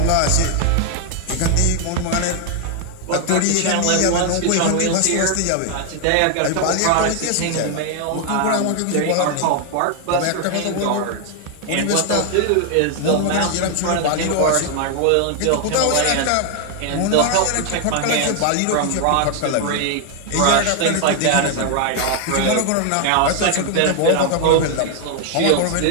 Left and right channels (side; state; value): both; different; correlation 0.00